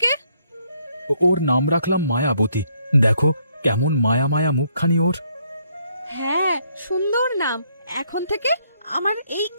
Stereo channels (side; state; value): both; inverted; correlation -0.71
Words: ওর নাম রাখলাম মায়াবতী। দেখো কেমন মায়া মায়া মুখখানি ওর। হ্যাঁ, সুন্দর নাম। এখন থেকে আমার এই